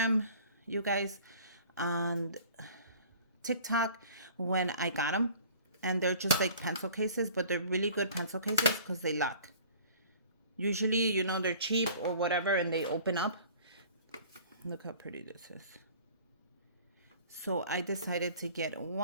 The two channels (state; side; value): inverted; both; correlation -0.49